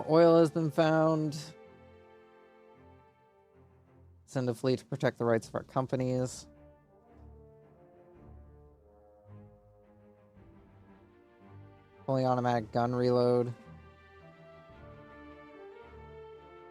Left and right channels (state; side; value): identical; both; correlation 1.00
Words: oil has been found. Send a fleet to protect the rights of our companies. Fully automatic gun reload.